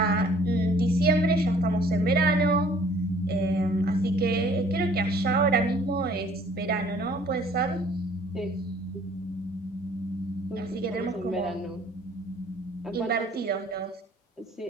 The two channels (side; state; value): both; normal; correlation 0.55